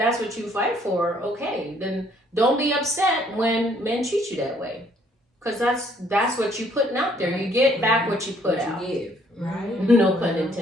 what you fight for, okay, then don't be upset when men treat you that way. Because that's what you putting out there. You get back what you put out. You give. Right? No pun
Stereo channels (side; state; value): both; normal; correlation 0.64